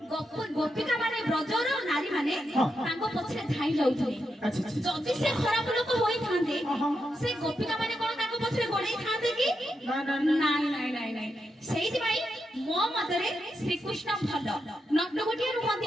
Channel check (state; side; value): normal; both; correlation 0.85